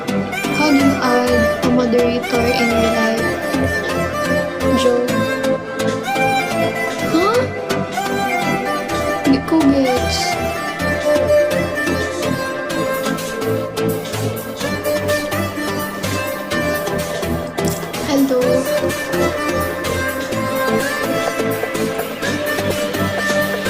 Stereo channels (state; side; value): identical; both; correlation 1.00